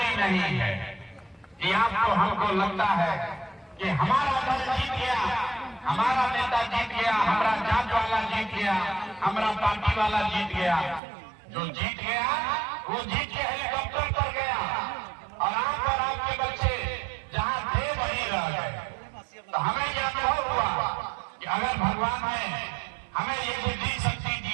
नहीं है। कि आपको हमको लगता है कि हमारा दल जीत गया, हमारा नेता जीत गया, हमारा जात वाला जीत गया, हमारा पार्टी वाला जीत गया। जो जीत गया वो जीत के हेलीकॉप्टर पर गया और आप और आपके बच्चे जहां थे वहीं रह गए। तो हमें यह अनुभव हुआ कि अगर भगवान ने हमें ये बुद्धि शक्ति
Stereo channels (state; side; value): drops out; left; at 11.0 s